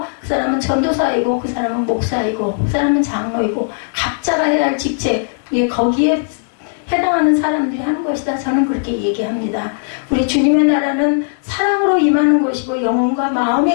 그 사람은 전도사이고, 그 사람은 목사이고, 그 사람은 장로이고, 각자가 해야 할 직책, 거기에 해당하는 사람들이 하는 것이다. 저는 그렇게 얘기합니다. 우리 주님의 나라는 사랑으로 임하는 것이고, 영혼과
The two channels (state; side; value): silent; right; digital silence